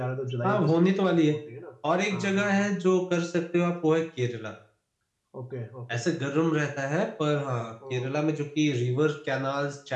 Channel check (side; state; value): both; identical; correlation 1.00